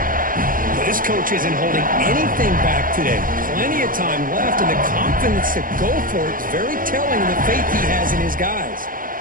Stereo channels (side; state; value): left; late; 0.41 ms